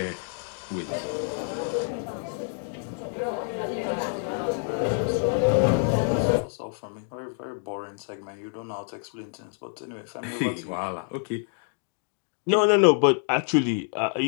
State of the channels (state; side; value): silent; right; 60 dB below the other